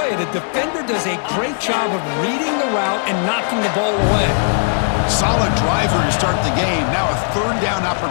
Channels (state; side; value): silent; right; 64 dB below the other